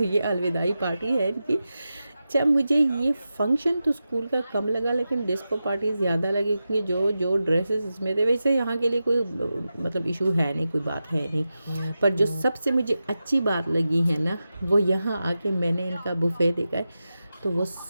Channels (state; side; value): inverted; both; correlation -0.92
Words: ये अलविदाई पार्टी है इनकी। अच्छा, मुझे ये फंक्शन तो स्कूल का कम लगा, लेकिन डिस्को पार्टी ज़्यादा लगी, क्योंकि जो जो ड्रेसेस इसमें थे, वैसे यहाँ के लिए कोई मतलब इशू है नहीं, कोई बात है नहीं। पर जो सबसे मुझे अच्छी बात लगी है ना, वो यहाँ आके मैंने इनका बुफे देखा है, तो वो